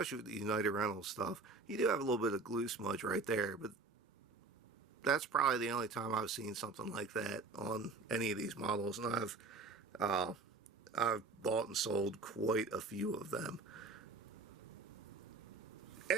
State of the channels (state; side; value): quieter; left; 3.8 dB